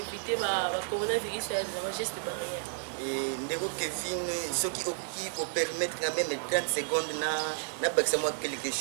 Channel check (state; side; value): silent; left; digital silence